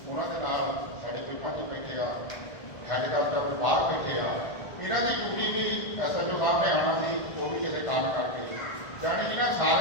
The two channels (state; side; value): late; right; 1.5 ms